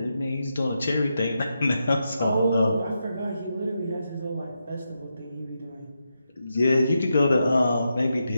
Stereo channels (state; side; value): inverted; both; correlation -0.86